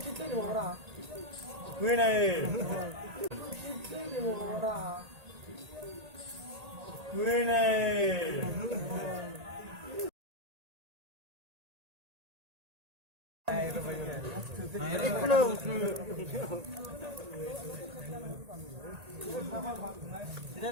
kita di mana? gue naik. Kita di mana? gue naik. Tidak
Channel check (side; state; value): left; late; 1.8 ms